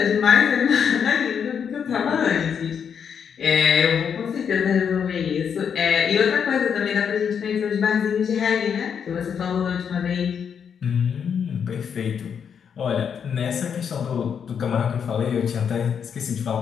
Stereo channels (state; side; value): quieter; right; 7.3 dB